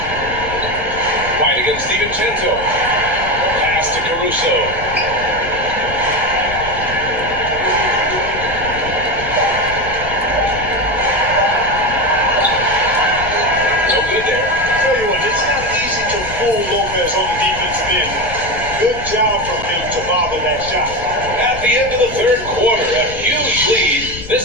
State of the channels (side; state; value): left; noise; rumble, 12 dB below the sound